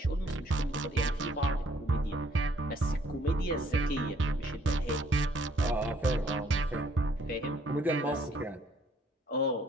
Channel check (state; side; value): normal; both; correlation 0.64